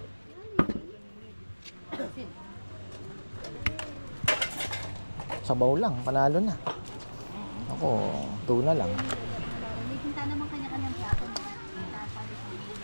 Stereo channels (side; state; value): both; inverted; correlation -1.00